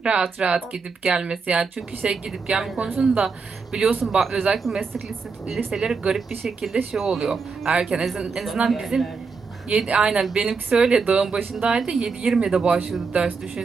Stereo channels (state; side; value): quieter; left; 4.9 dB